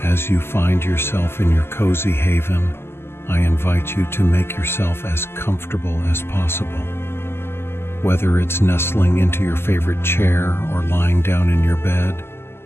As you find yourself in your cozy haven, I invite you to make yourself as comfortable as possible. Whether it's nestling into your favorite chair or lying down in your bed,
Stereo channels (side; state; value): right; late; 0.12 ms